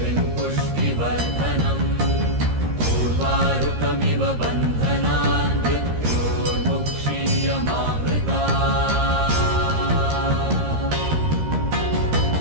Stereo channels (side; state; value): left; late; 13 ms